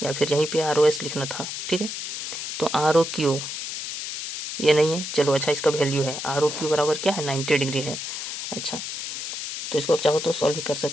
या फिर यहीं पे आर ओ एस लिखना था, ठीक है। तो आर ओ क्यू ये नहीं है, चलो अच्छा इसका वैल्यू है आर ओ क्यू बराबर क्या है? 90 डिग्री है। अच्छा, तो इसको आप चाहो तो सॉल्व भी कर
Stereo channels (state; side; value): noise; left; hiss, 6 dB below the sound